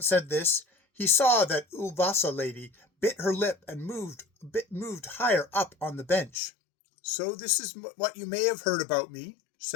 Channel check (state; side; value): drops out; right; at 6.4 s